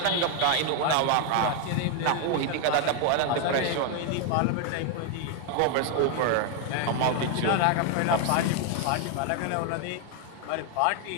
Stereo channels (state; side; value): different; both; correlation 0.01